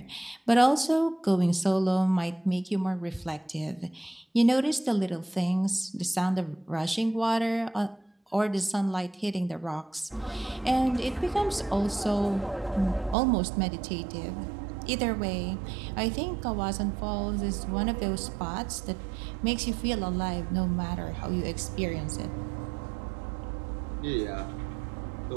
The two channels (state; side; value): drops out; left; at 13.2 s